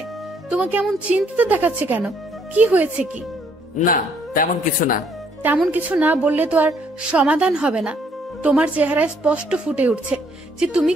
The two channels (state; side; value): normal; both; correlation 0.67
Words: তোমাকে এমন চিন্তিত দেখাচ্ছে কেন? কি হয়েছে কি? না, তেমন কিছু না। তেমন কিছু না বললে তো আর সমাধান হবে না। তোমার চেহারায় স্পষ্ট ফুটে উঠছে যে তুমি